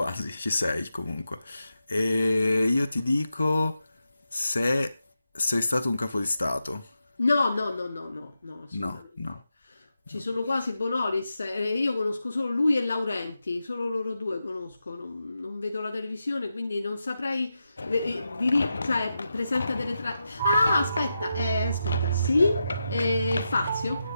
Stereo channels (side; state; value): both; inverted; correlation -0.88